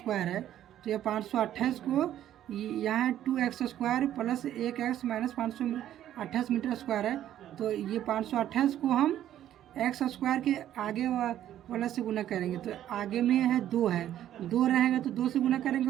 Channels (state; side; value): quieter; left; 11.7 dB